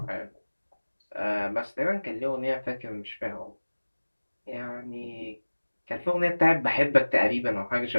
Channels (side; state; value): both; inverted; correlation -1.00